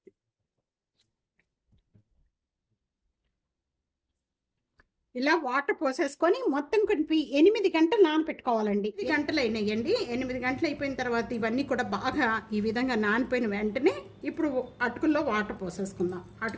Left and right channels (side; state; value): both; identical; correlation 1.00